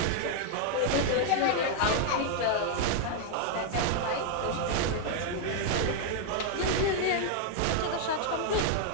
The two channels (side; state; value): both; different; correlation 0.00